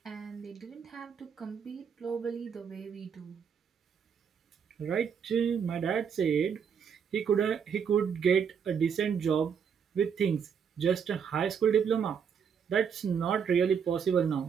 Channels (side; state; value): left; quieter; 7.1 dB